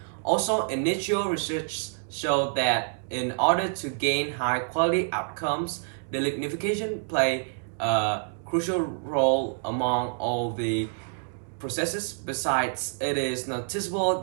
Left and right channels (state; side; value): silent; left; 59 dB below the other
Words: Also, initial research showed that in order to gain high quality outcomes, the lignification play a crucial role among all the processes. Besides, it is noticeable